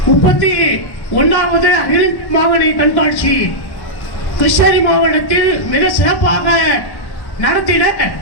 31வது அகில மாவட்ட கண்காட்சி கிருஷ்ணகிரி மாவட்டத்தில் மிக சிறப்பாக நடத்திட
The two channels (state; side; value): late; right; 1.1 ms